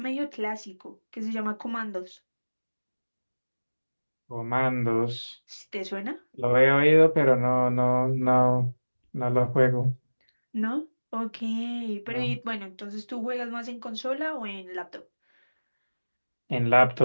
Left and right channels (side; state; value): both; inverted; correlation -1.00